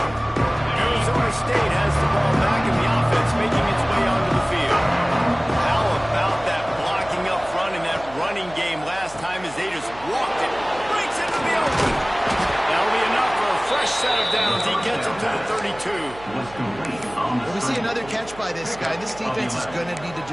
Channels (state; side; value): noise; right; hum, 19 dB below the sound